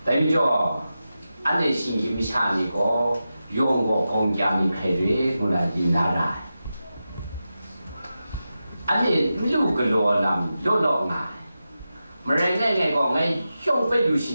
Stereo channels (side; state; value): both; inverted; correlation -0.91